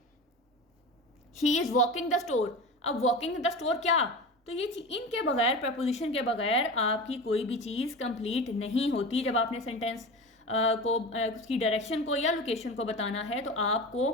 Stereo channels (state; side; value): normal; both; correlation 0.30